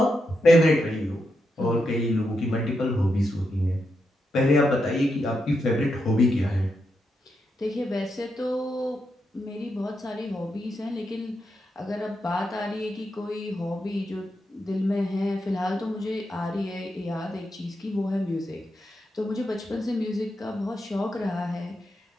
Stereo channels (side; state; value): both; normal; correlation 0.84